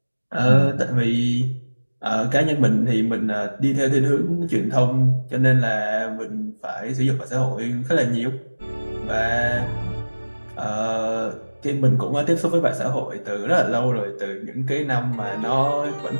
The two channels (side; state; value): both; inverted; correlation -1.00